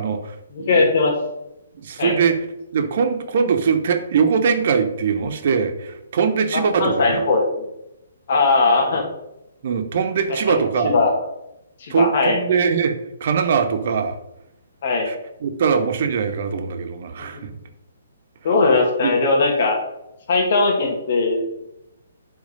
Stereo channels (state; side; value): inverted; both; correlation -0.61